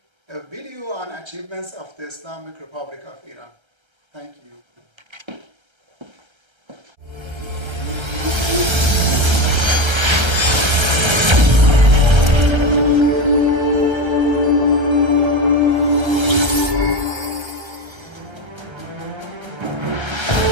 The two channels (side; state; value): left; late; 1.3 ms